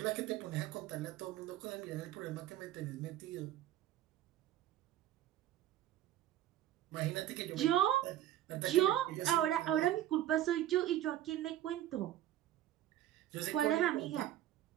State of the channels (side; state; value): left; quieter; 13.0 dB